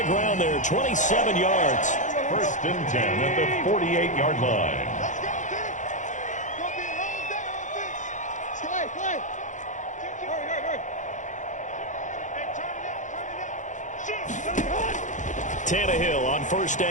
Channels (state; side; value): late; right; 0.36 ms